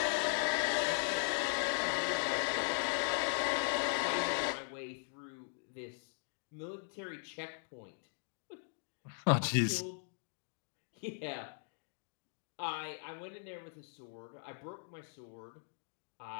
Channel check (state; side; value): silent; right; digital silence